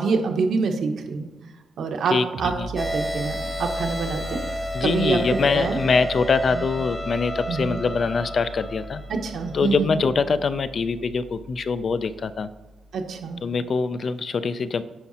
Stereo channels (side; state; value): both; normal; correlation 0.82